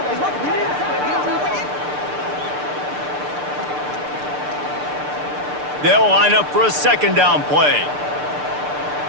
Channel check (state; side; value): late; left; 6.7 ms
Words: They'll line up for a second down play.